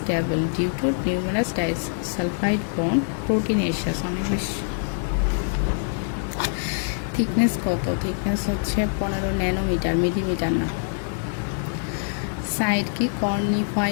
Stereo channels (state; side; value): silent; right; 57 dB below the other